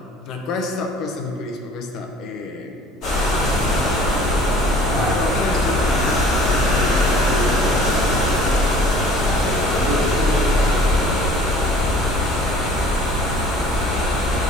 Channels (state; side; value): normal; both; correlation 0.50